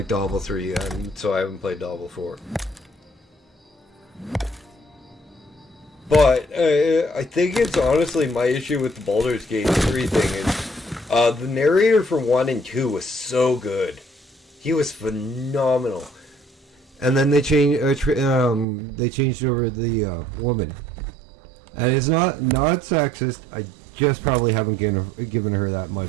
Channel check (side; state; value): left; drops out; at 18.7 s